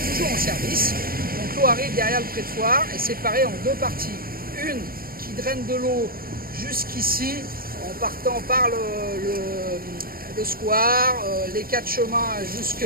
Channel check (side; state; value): left; late; 0.43 ms